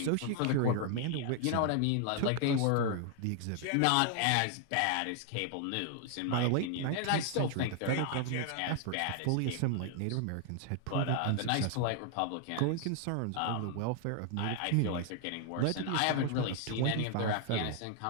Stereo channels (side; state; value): both; different; correlation 0.00